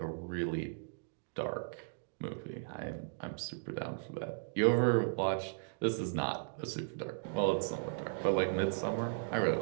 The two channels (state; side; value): silent; left; digital silence